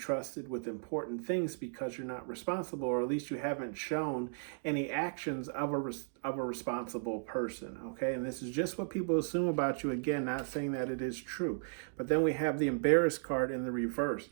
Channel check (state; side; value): silent; left; digital silence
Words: with important things because you're not responsible, or at least you haven't shown any actions of a responsible person, okay? And this is just what people assume about you. Again, not saying that it is true. But then we have the embarrassed card in the reverse,